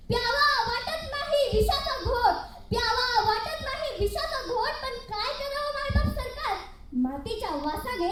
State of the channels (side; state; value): both; identical; correlation 1.00